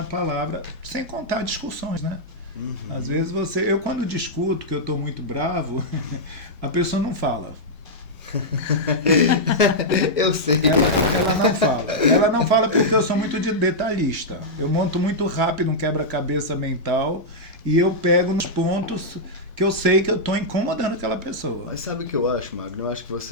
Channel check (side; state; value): both; normal; correlation -0.08